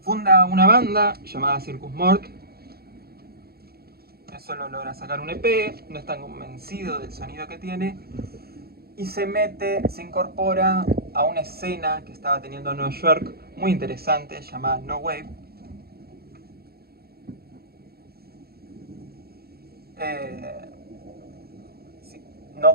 Funda una banda llamada Circus Mort. Solo logra sacar un EP, no está convencido del sonido que tiene. Y se incorpora a una escena que estaba teniendo en Nueva York muy interesante, llamada No Wave. Si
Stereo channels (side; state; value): left; late; 0.45 ms